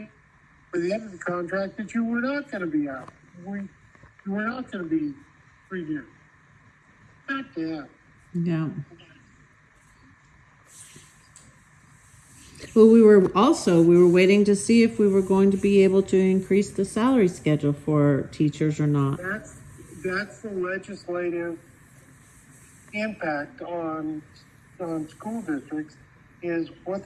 the end of the contract that you were not going to be out. You were not going to be renewed. God damn. yeah. Well, we were waiting to see if we were going to be able to increase the salary schedule for teachers or not. That's the legislative impact on school districts is what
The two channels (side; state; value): both; identical; correlation 1.00